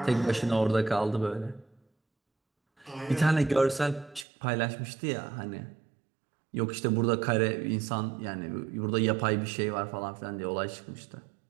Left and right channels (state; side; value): drops out; left; at 4.2 s